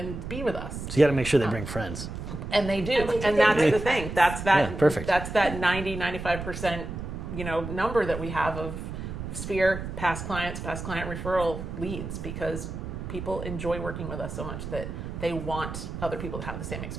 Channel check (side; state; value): right; noise; rumble, 7 dB below the sound